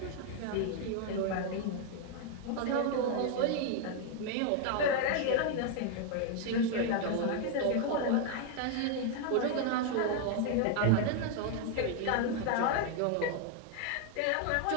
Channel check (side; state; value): both; different; correlation 0.01